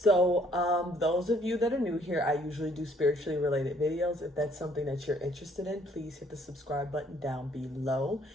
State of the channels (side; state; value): both; normal; correlation 0.63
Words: those of you that are new here, I usually do spiritually related videos. If that's something that you're interested in, please hit the subscribe button down below.